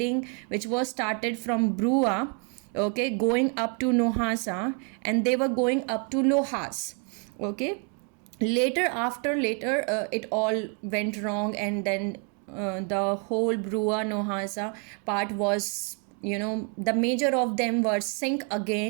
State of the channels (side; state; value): left; quieter; 37.0 dB